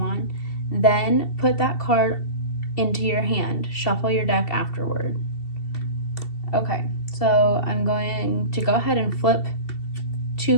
Then put that card into your hand. Shuffle your deck afterward. Okay, so I'm going to go ahead and flip 2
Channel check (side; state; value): right; late; 2.7 ms